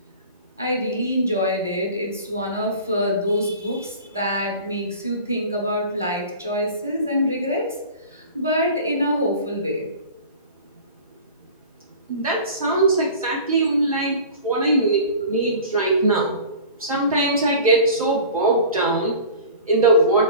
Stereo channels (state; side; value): inverted; both; correlation -0.40